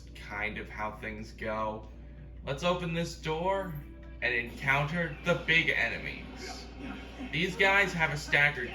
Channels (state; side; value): identical; both; correlation 1.00